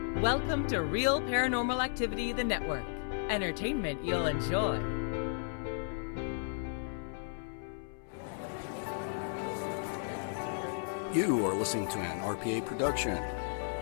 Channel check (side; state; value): right; silent; 55 dB below the other